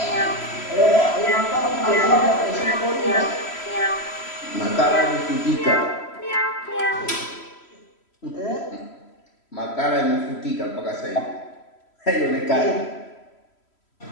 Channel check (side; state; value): right; late; 3.1 ms